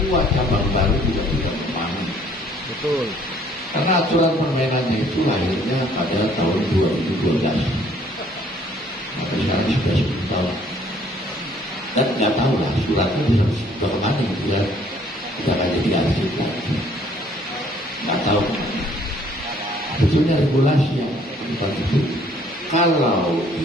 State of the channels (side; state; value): both; normal; correlation 0.60